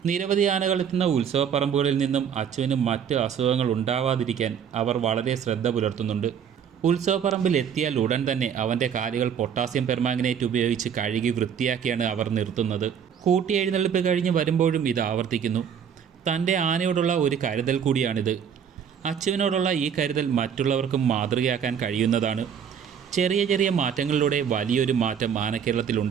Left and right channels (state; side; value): quieter; left; 7.9 dB